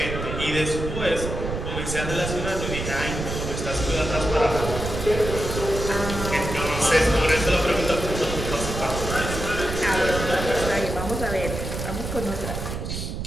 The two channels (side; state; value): right; noise; rumble, 5 dB below the sound